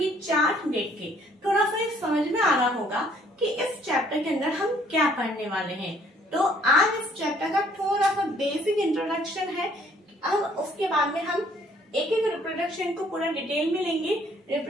चार्ट देख के थोड़ा सा समझ में आ रहा होगा कि इस चैप्टर के अंदर हम क्या पढ़ने वाले हैं। तो आज इस चैप्टर का थोड़ा सा बेसिक इंट्रोडक्शन है। अब उसके बाद में हम एक एक रिप्रोडक्शन को पूरा डिटेल में लेंगे।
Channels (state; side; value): normal; both; correlation 0.62